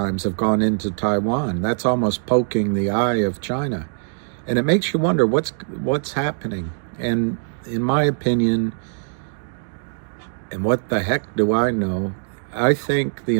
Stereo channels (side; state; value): left; silent; digital silence